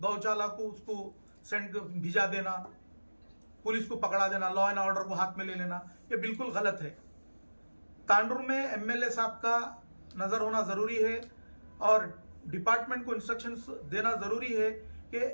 को उसको सेंड भिजा देना, पुलिस को पकड़ा देना, लॉ एंड ऑर्डर को हाथ में ले लेना, ये बिल्कुल गलत है। तांडुर में एमएलए साहब का नजर होना जरूरी है और डिपार्टमेंट को इंस्ट्रक्शंस देना जरूरी है कि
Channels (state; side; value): inverted; both; correlation -1.00